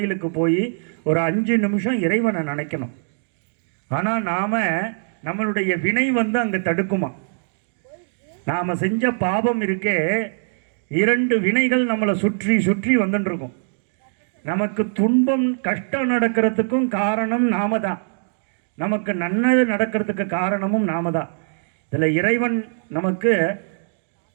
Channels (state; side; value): silent; left; digital silence